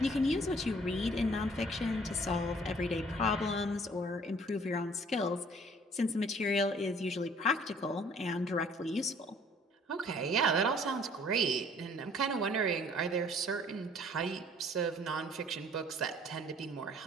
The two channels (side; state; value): both; normal; correlation 0.56